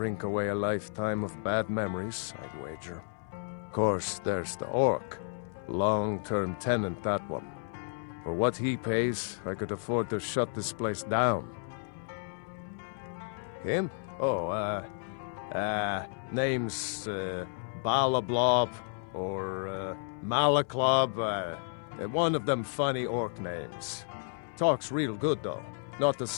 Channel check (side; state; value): right; silent; 56 dB below the other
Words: away a lifetime of bad memories, I'd wager. Course, there's the orc. Long-term tenant, that one. For what he pays, I could afford to shut this place down. Him? Oh, name's, Balablob, or, Malaklob, one of them funny orc names. Talks real good, though. Not a